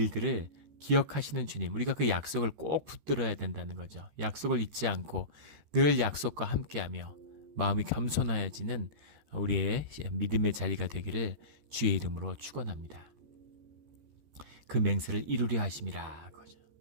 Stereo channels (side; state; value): left; late; 13 ms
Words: 기억하시는 주님, 우리가 그 약속을 꼭 붙들어야 된다는 거죠. 약속을 잊지 않고 늘 약속과 함께하며 마음이 겸손하여지는 우리의 믿음의 자리가 되기를 주의 이름으로 축원합니다. 그 맹세를 이루려 하심이라. 그죠.